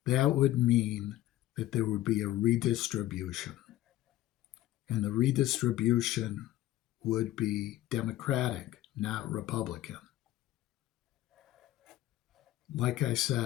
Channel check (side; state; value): right; quieter; 14.8 dB